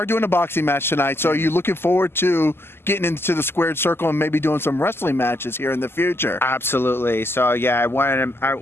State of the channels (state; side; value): late; right; 0.12 ms